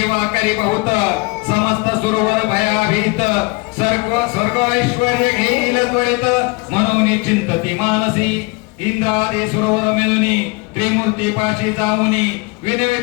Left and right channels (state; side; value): quieter; right; 27.4 dB